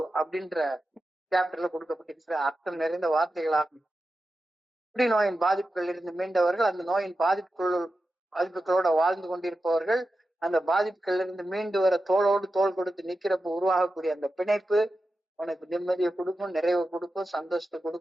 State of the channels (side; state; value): both; normal; correlation 0.91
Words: அப்படின்ற சாப்டர்ல கொடுக்கப்பட்டிருக்கிற அர்த்தம் நிறைந்த வார்த்தைகளாகும். நோயின் பாதிப்புகள் இருந்து மீண்டவர்கள், அந்த நோயின் பாதிப்புகளோட வாழ்ந்து கொண்டிருப்பவர்கள், அந்த பாதிப்புகள் இருந்து மீண்டு வர தோளோடு தோள் கொடுத்து நிக்கிறப்ப உருவாகக்கூடிய அந்த பிணைப்பு உனக்கு நிம்மதியை கொடுக்கும், நிறைவை கொடுக்கும், சந்தோஷத்தை